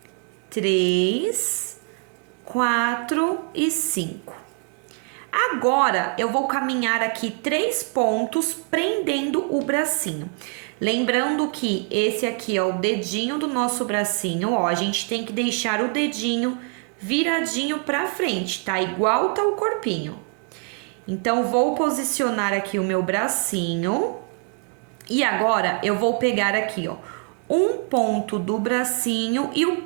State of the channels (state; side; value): quieter; left; 36.6 dB